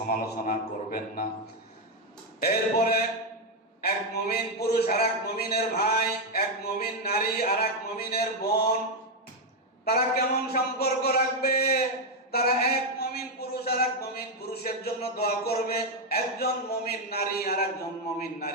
করবেন না। এরপরে এক মুমিন পুরুষ আর এক মুমিনের ভাই, এক মুমিন নারী আর এক মুমিনের বোন, তারা কেমন সম্পর্ক রাখবে? তারা এক মুমিন পুরুষ আর এক মুমিন পুরুষের জন্য দোয়া করবে, একজন মুমিন নারী আর একজন মুমিন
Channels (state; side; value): normal; both; correlation 0.04